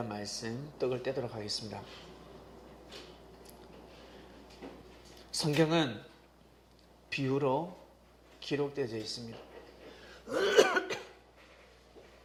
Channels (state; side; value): identical; both; correlation 1.00